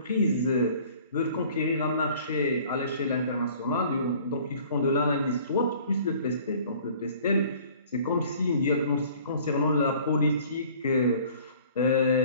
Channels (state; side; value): inverted; both; correlation -0.51